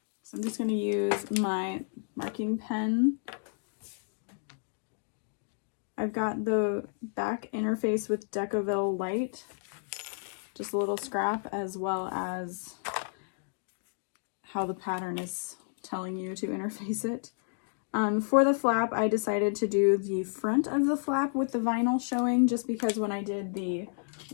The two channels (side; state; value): right; silent; digital silence